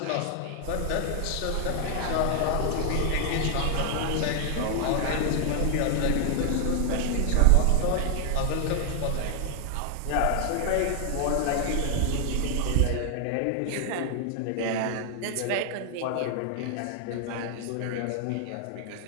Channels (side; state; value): both; different; correlation 0.00